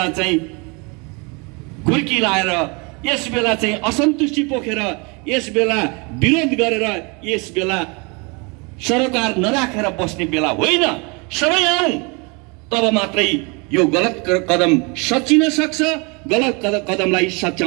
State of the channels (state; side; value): quieter; left; 30.4 dB